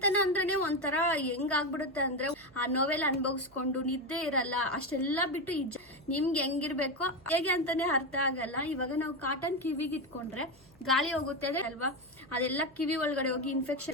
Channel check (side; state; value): right; noise; hum, 28 dB below the sound